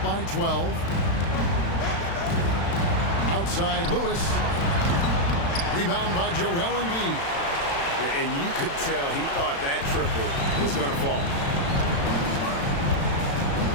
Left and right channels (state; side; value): late; right; 36 ms